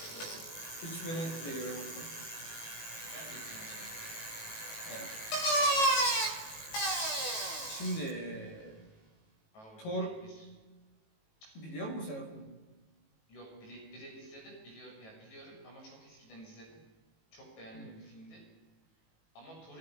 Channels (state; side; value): late; right; 18 ms